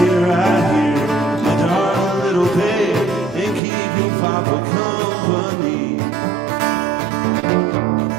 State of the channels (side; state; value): left; drops out; at 3.6 s